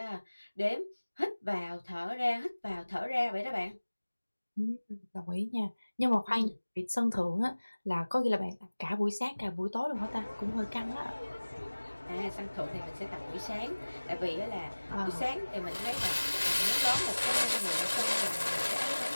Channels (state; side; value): inverted; both; correlation -1.00